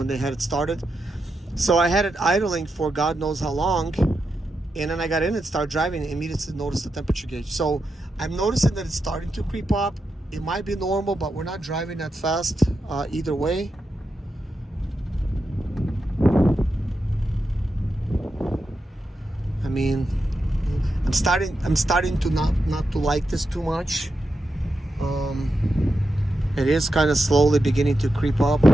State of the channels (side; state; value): both; normal; correlation 0.87